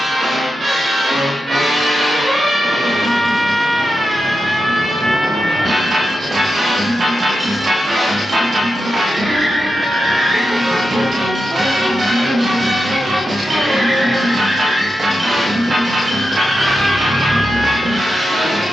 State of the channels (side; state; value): both; normal; correlation 0.89